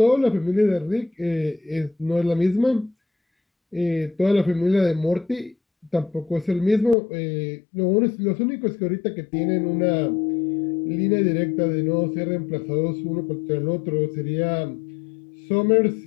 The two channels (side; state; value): right; drops out; at 7.0 s